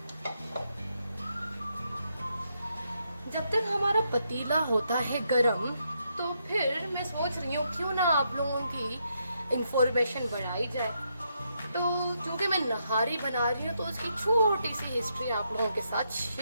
जब तक हमारा पतीला होता है गरम फिर मैं सोच रही हूँ क्यों ना आप लोगों की इंफॉर्मेशन बढ़ाई जाए। तो चूंकि मैं नहारी बना रही हूँ तो उसकी छोटी सी हिस्ट्री आप लोगों के साथ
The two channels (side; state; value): both; inverted; correlation -0.79